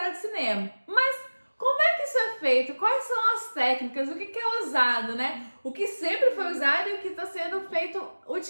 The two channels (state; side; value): inverted; both; correlation -1.00